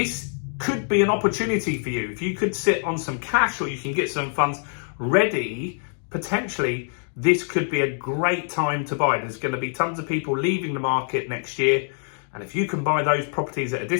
could be an opportunity for you. If you could sit on some cash or you can get some funds ready, potentially this could be a great time to buy. There's going to be tons of people leaving the market next year. And if you can buy those properties at a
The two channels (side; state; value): right; silent; 56 dB below the other